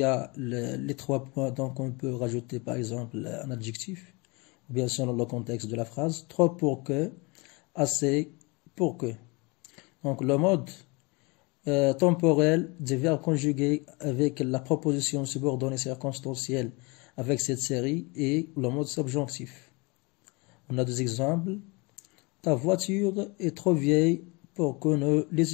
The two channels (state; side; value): quieter; right; 27.7 dB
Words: a les 3 points, donc on peut rajouter par exemple un adjectif, ou bien selon le contexte de la phrase, trop pour que, assez pour que. Donc le mode temporel des verbes conjugués avec la proposition subordonnée circonstancielle avec cette série et le mode subjonctif. On a des exemples. Ta voiture est trop vieille pour que nous